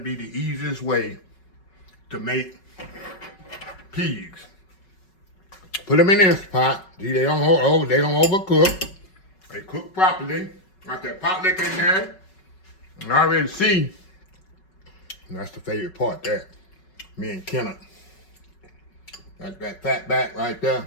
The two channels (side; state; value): right; late; 5.3 ms